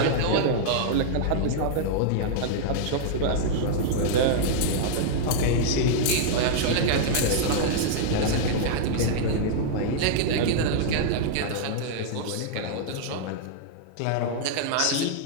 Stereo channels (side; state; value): both; different; correlation -0.01